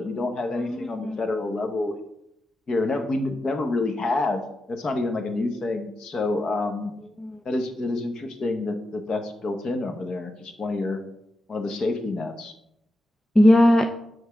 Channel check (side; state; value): both; normal; correlation 0.90